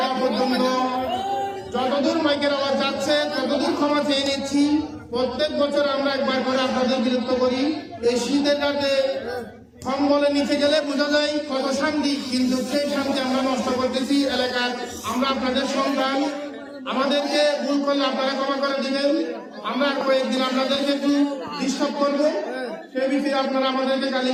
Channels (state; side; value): identical; both; correlation 1.00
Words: পর্যন্ত যতদূর মাইকের আওয়াজ যাচ্ছে ততদূর ক্ষমা চেয়ে নিচ্ছি। প্রত্যেক বছর আমরা একবার করে আপনাদের বিরক্ত করি। এই শীতের রাতে কম্বলে নিচে গেলে বোঝা যায় কত শান্তি, কিন্তু সেই শান্তি আমরা নষ্ট করতেছি এলাকার। আমরা আপনাদের সন্তান, আমাদেরকে ভুল করলে আপনারা ক্ষমা করে দিবেন। আমরা কয়েকদিন আপনাদেরকে একটু ডিস্টার্ব করবো, সে বিষয়ে আপনারা আমাদেরকে